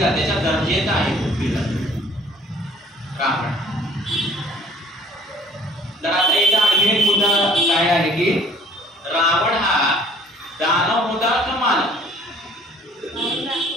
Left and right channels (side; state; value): both; normal; correlation 0.56